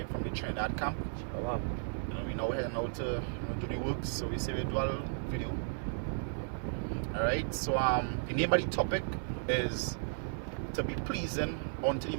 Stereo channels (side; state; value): left; silent; 55 dB below the other